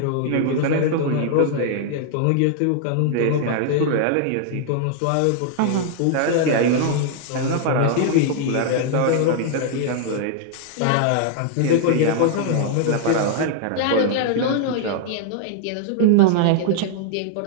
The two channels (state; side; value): different; both; correlation 0.00